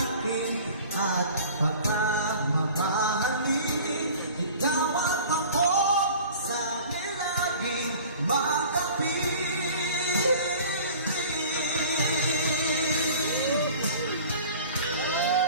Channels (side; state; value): both; inverted; correlation -0.44